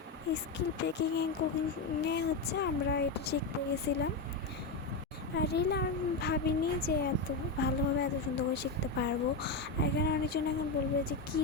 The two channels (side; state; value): right; quieter; 3.7 dB